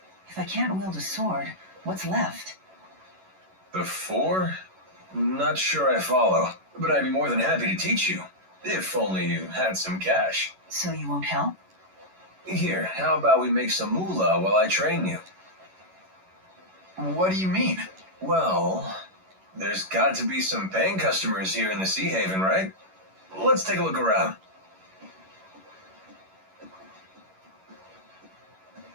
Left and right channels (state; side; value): late; left; 11 ms